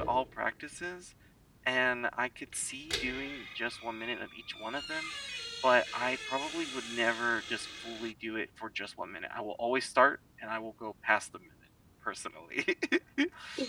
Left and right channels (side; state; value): both; identical; correlation 1.00